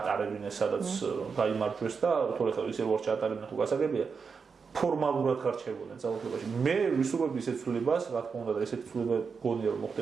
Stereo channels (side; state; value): left; quieter; 5.5 dB